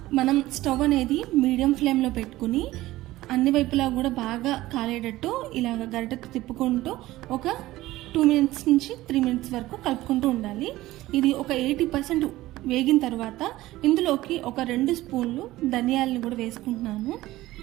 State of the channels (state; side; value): quieter; left; 16.9 dB